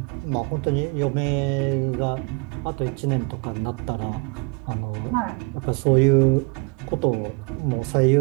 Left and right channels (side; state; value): left; quieter; 30.8 dB